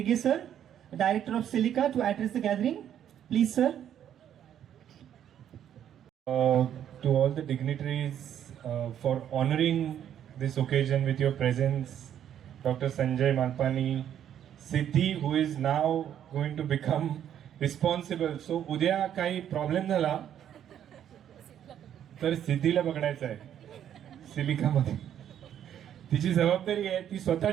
sir, Director of Silica, to address the gathering. Please, sir. To all the dignitaries for honoring this occasion with your presence, Dr. Sanjay Malpani, Siddhi, who is now going to become responsible. So, उद्या काही problem झाला तर सिद्धीला बघायचं आहे सिलिकामध्ये. तिची जबाबदारी आहे, ती स्वतः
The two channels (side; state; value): left; quieter; 10.0 dB